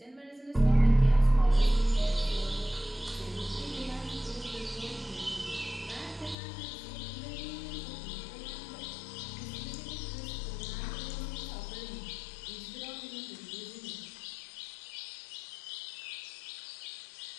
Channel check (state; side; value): drops out; right; at 6.4 s